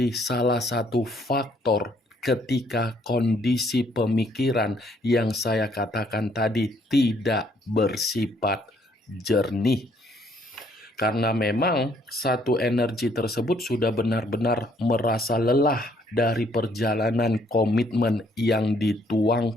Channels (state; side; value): normal; both; correlation 0.66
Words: salah satu faktor ketika kondisi pemikiran yang saya katakan tadi tidak bersifat jernih. Karena memang satu energi tersebut sudah benar-benar merasa lelah dari perjalanan komitmen yang